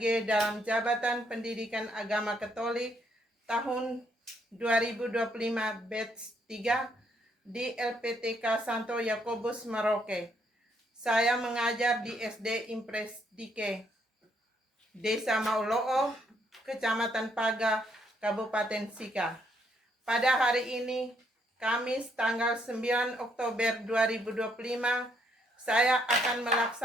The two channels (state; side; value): normal; both; correlation 0.72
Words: dalam Jabatan Pendidikan Agama Katolik tahun 2025 batch 3 di LPTK Santo Yakobus Merauke. Saya mengajar di SD Impres Dike, Desa Mauloo, Kecamatan Paga, Kabupaten Sika. Pada hari ini, Kamis tanggal 9 Oktober 2025, saya akan